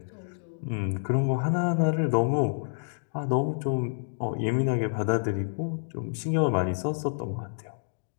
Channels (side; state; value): right; silent; digital silence